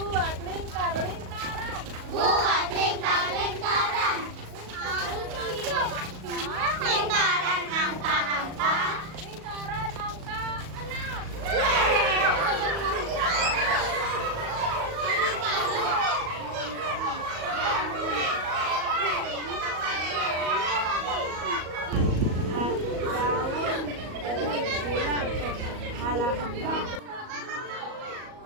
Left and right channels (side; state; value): left; late; 38 ms